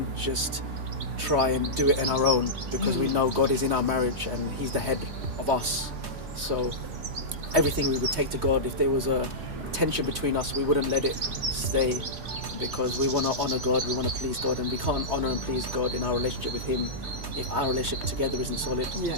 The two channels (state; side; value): late; left; 3.3 ms